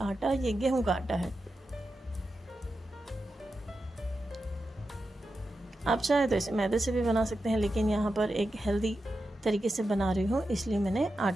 आटा। ये गेहूँ का आटा है। आप चाहे तो इसे मैदे से भी बना सकते हैं, लेकिन यहाँ पर एक हेल्दी तरीके से बना रही हूँ, इसलिए मैंने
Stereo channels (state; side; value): normal; both; correlation 0.90